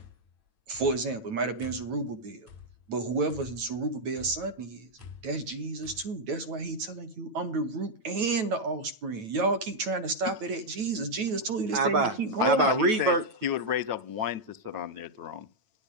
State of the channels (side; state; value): left; late; 9.1 ms